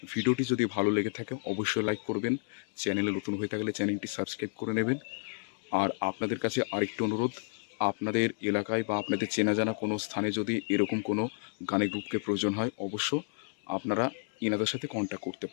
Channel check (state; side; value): silent; right; digital silence